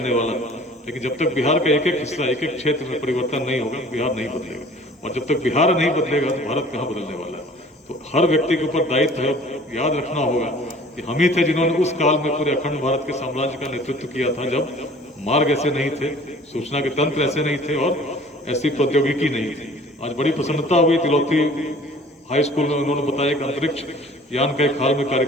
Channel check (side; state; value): both; normal; correlation 0.49